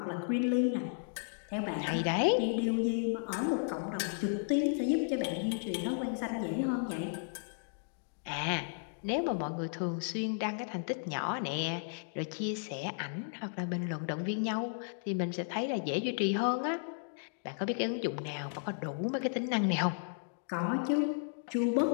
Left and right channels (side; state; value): right; silent; digital silence